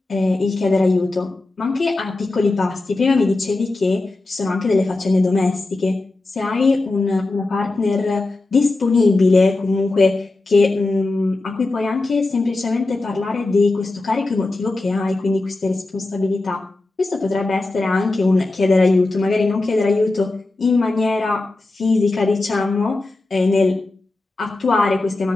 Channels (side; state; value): right; quieter; 3.1 dB